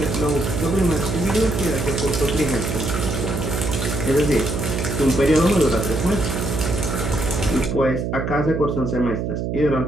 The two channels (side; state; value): right; noise; hum, 2 dB below the sound